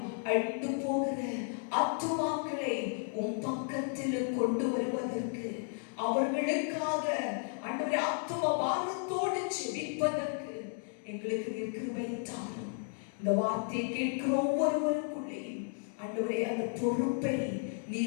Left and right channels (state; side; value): silent; right; 55 dB below the other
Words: அழிந்து போகிற ஆத்துமாக்களை உன் பக்கத்தில் கொண்டு வருவதற்கு, அவர்களுக்காக ஆண்டவரே ஆத்தும பாரத்தோடு ஜெபிப்பதற்கு எங்களுக்கு நீர் கிருபை தாரும். இந்த வார்த்தையை கேட்கிற ஒவ்வொருவருக்குள்ளேயும் ஆண்டவரே அந்த பொறுப்பை